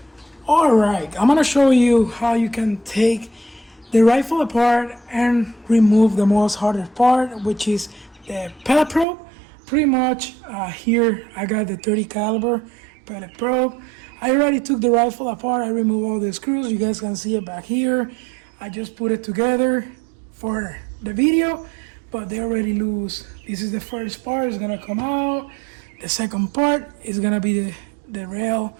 Alright, I'm gonna show you how you can take the rifle apart and remove the most hardest part, which is the pellet probe. Pretty much here I got the 30 caliber pellet probe. I already took the rifle apart. I removed all the screws. You guys can see it back here. I just put it together for the video, but they're already loose. This is the first part. It's gonna come out. The second part is gonna be the rail.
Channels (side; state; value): left; drops out; at 9.1 s